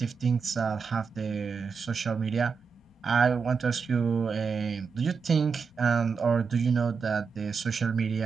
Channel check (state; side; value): quieter; left; 5.5 dB